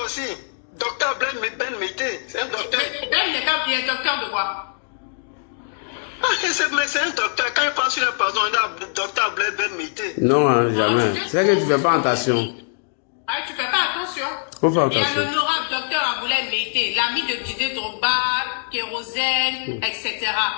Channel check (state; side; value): silent; right; digital silence